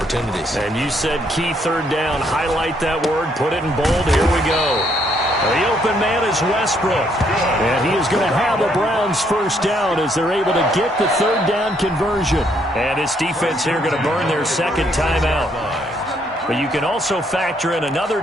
And you said key third down. Highlight that word. Put it in bold. Here we go. The open man is Westbrook. And he is going to have a Browns first down as they're able to get the third down conversion. And his defense here going to burn their second timeout. But you can also factor in another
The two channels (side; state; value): both; normal; correlation 0.70